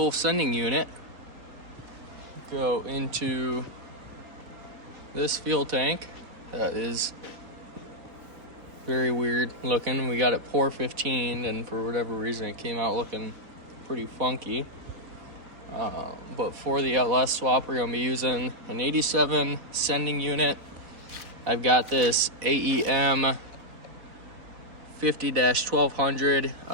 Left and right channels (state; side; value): late; left; 4.2 ms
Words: sending unit go into this fuel tank that is very weird looking. We got it pour 15 and for whatever reason it came out looking pretty funky. But for the LS swap, we're going to be using an 87 sending unit. I've got this AEM